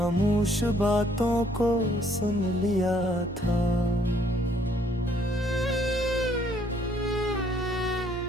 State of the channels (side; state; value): both; normal; correlation 0.64